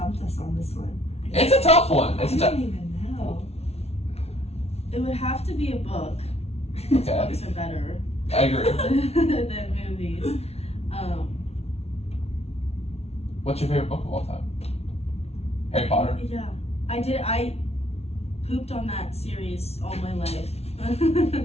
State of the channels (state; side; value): late; right; 0.31 ms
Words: us on this one. It's a tough one. It's I a don't tough. even know. It would have to be a book. Okay. Books are better I agree. than movies. What's your favorite book of all time? Harry Potter. Yeah, I pooped on that series all my life.